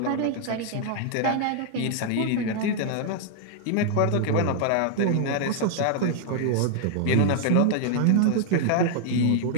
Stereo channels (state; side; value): different; both; correlation 0.00